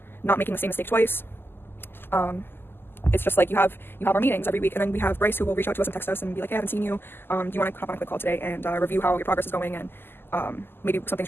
not making the same mistake twice. It's just like you have our meetings every week, and then we have Bryce who will reach out to us and text us and be like, hey, I haven't seen you. Do you want to hop on a quick call today and review how your progress is going, and maybe some things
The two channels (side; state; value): right; late; 0.10 ms